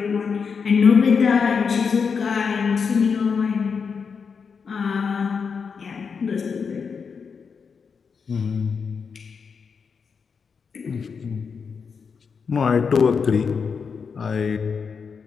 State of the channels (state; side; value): quieter; right; 5.8 dB